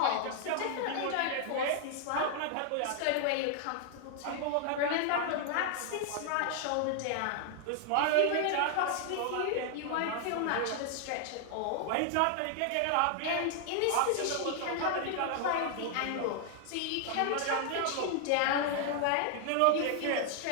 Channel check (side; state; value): both; different; correlation 0.00